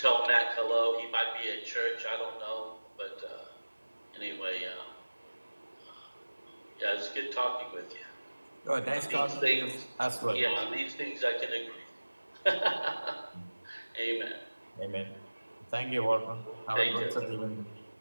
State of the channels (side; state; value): both; inverted; correlation -1.00